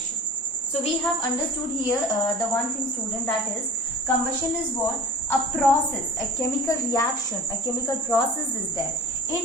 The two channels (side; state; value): both; normal; correlation 0.40